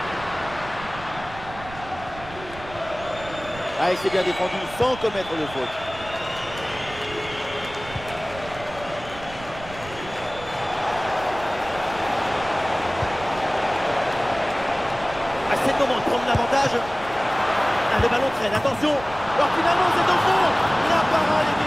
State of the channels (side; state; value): right; noise; rumble, 16 dB below the sound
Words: Ah, et c'est bien défendu sans commettre de faute. Ah, c'est le moment de prendre l'avantage. Ah, le ballon traîne, attention. Alors finalement c'est au fond. La parade